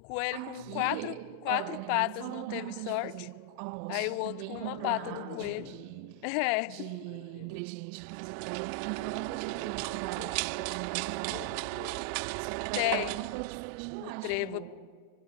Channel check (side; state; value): both; different; correlation -0.01